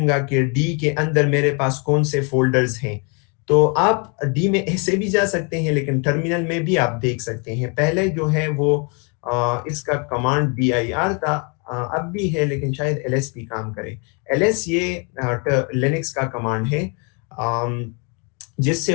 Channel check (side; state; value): right; quieter; 34.9 dB